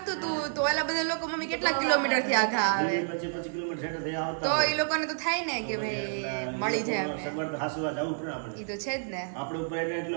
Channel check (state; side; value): silent; left; 58 dB below the other